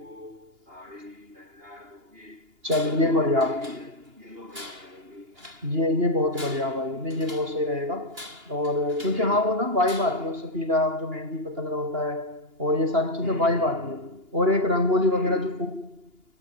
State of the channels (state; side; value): late; left; 2.8 ms